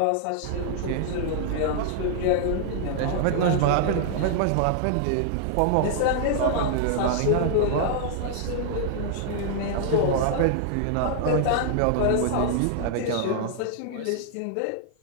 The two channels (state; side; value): different; both; correlation -0.01